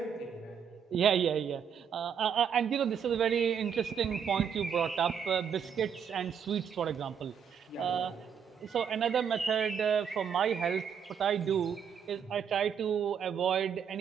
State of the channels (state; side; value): quieter; left; 7.5 dB